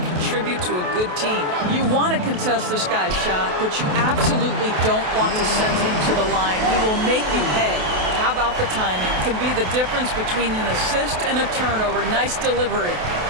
contribute to a good team. You want to contest this guy's shot, but you absolutely don't want to send him to the line. He will make you pay. How about the timing? Can be the difference between an assist and a turnover. Nice delivery.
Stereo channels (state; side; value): late; left; 28 ms